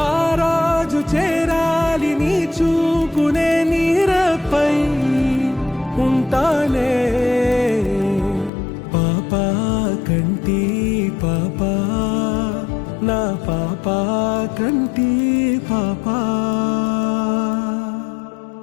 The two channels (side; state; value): right; drops out; at 8.5 s